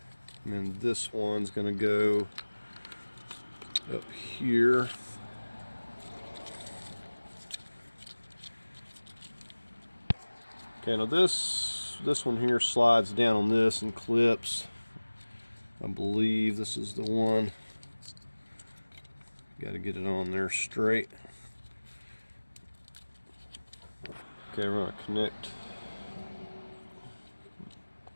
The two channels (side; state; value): both; inverted; correlation -1.00